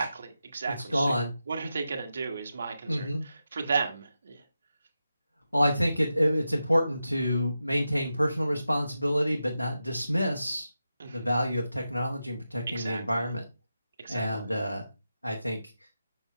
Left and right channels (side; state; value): both; inverted; correlation -0.90